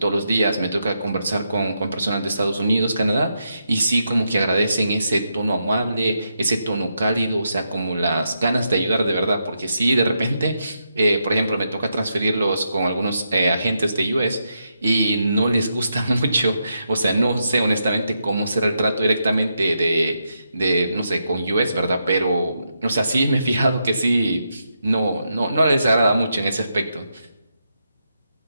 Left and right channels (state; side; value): inverted; both; correlation -0.83